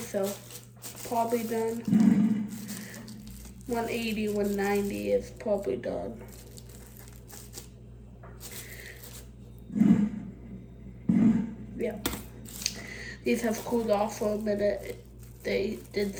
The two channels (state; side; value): identical; both; correlation 1.00